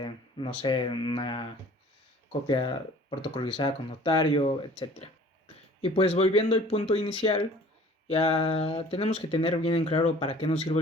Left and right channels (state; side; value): normal; both; correlation 0.50